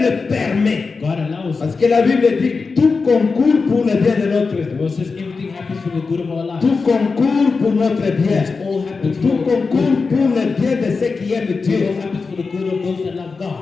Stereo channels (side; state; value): right; quieter; 4.5 dB